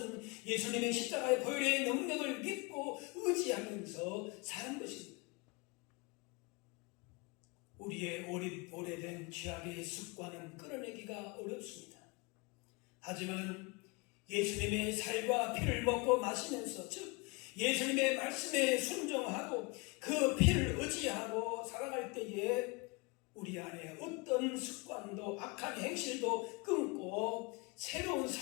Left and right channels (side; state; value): right; quieter; 28.5 dB